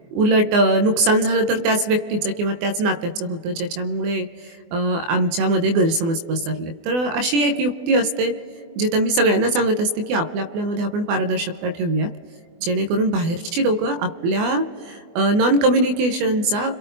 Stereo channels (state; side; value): late; left; 24 ms